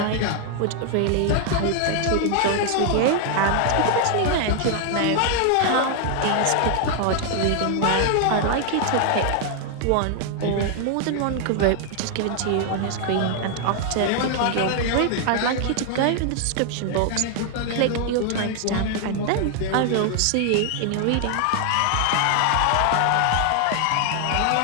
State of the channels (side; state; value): both; different; correlation 0.00